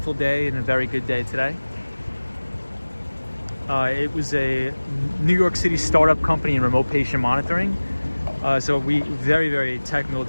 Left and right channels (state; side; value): inverted; both; correlation -1.00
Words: day and a very good day today. It was a New York City startup company in remote patient monitoring. So very, very technical